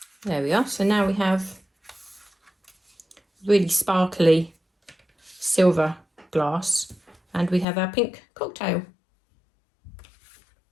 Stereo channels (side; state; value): right; drops out; at 7.7 s